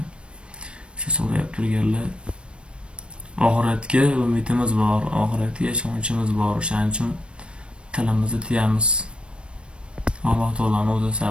Shu so'rayib turganlar. Oxiratga umidimiz bor, oxiratga ishonchimiz bor. O'shaning uchun tilimizni tiyamiz. Alloh taoloning o'zi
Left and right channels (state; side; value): late; left; 0.057 ms